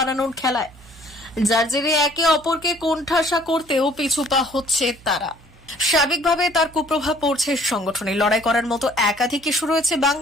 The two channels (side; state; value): right; noise; hum, 24 dB below the sound